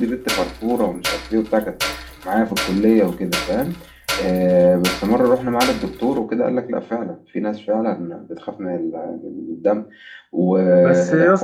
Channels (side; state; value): both; identical; correlation 1.00